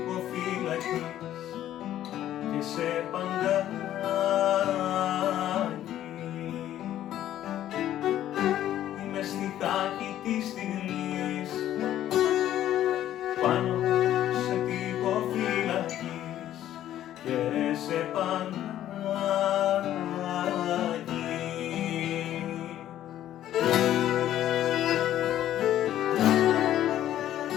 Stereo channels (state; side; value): quieter; right; 12.2 dB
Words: φυλακής και σε παγκάκι. Είμαι στιχάκι της στιγμής, πάνω σε τοίχο φυλακής και σε παγκάκι.